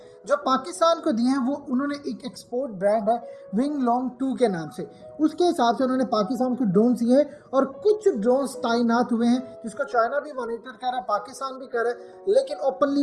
جو پاکستان کو دیے ہیں وہ انہوں نے ایک ایکسپورٹ برانڈ ہے ونگ لانگ 2 کے نام سے, اس کے حساب سے انہوں نے پاکستان کو ڈرونز دیے ہیں, اور کچھ ڈرونز تعینات ہوئے ہیں جس کو چائنا بھی مانیٹر کر رہا ہے, پاکستان بھی کر رہا ہے, لیکن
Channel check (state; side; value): identical; both; correlation 1.00